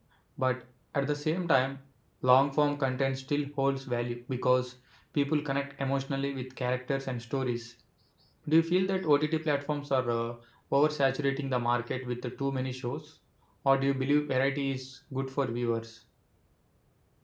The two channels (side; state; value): both; identical; correlation 1.00